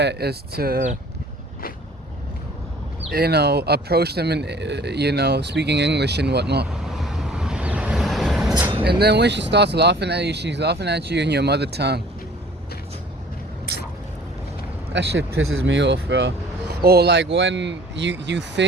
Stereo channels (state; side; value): normal; both; correlation 0.51